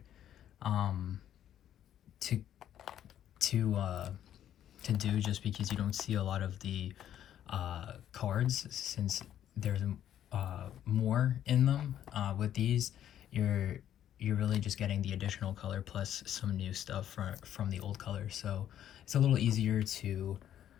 to to do, just because you don't see a lot of the cards, since there's more in them. With these, you're really just getting the additional color plus some new stuff from the old color, so it's a little easier to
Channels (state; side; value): quieter; right; 10.8 dB